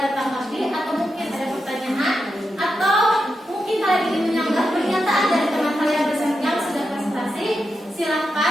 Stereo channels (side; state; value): both; normal; correlation 0.87